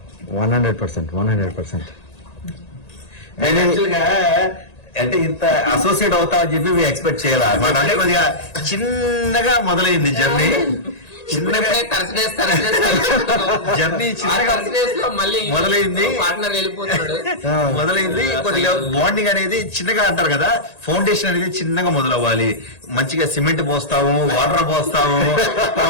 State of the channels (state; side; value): late; right; 1.8 ms